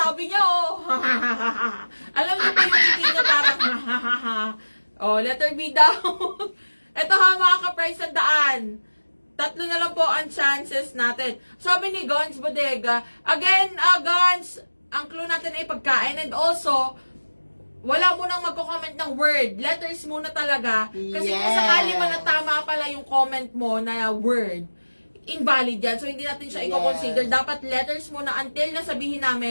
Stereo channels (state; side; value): inverted; both; correlation -1.00